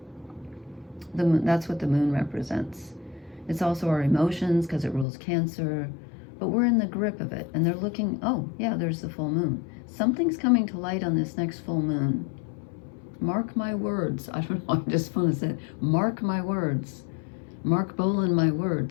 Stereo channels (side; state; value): right; drops out; at 5.1 s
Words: The moon, that's what the moon represents. It's also our emotions, because it rules Cancer, but we're in the grip of it, and they're looking, oh yeah, there's the full moon. Something's coming to light on this next full moon. Mark my words. I don't know, I just want to say, mark my words. Mark Bolan my